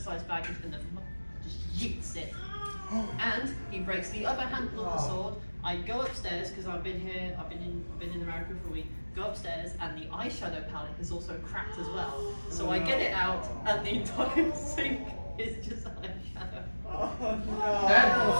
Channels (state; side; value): inverted; both; correlation -1.00